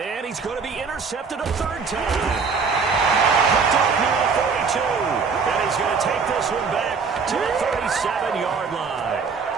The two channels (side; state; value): left; quieter; 5.3 dB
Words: he's going to be intercepted a 3rd time. Picked off near the 42. And he's going to take this one back to the 37-yard line.